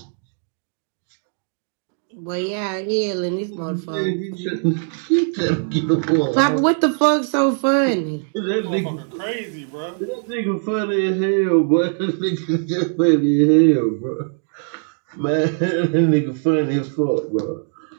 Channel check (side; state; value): left; silent; 65 dB below the other